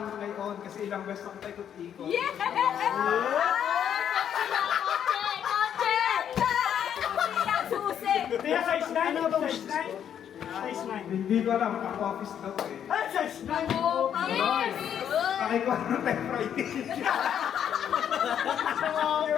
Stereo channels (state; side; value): quieter; right; 9.1 dB